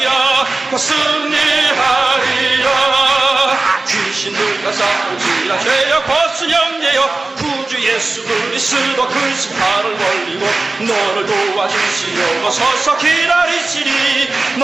승리하리라. 귀신들과 싸울지라 죄악 벗은 영예여 구주 예수 그리스도 그 심판을 멀리고 너를 도와주시려고 서서 기다리시니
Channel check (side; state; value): left; quieter; 3.3 dB